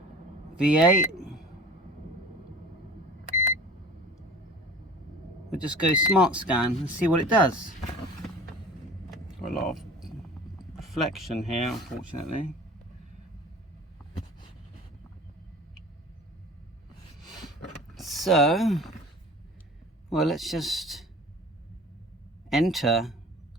V8. We'll just go smart scan and see what it does. Got a lot of reflection here, unfortunately. So, well, let's just enter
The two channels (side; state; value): both; normal; correlation 0.42